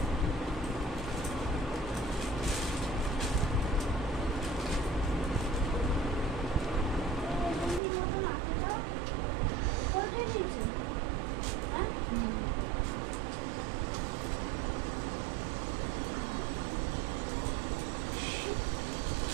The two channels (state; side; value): drops out; left; at 7.8 s